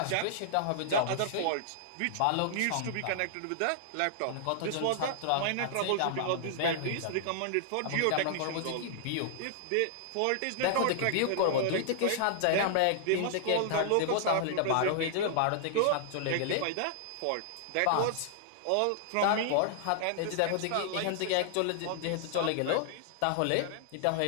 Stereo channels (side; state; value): both; different; correlation -0.01